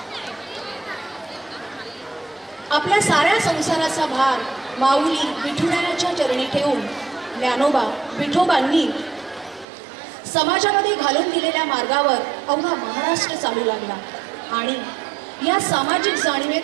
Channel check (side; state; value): left; drops out; at 9.7 s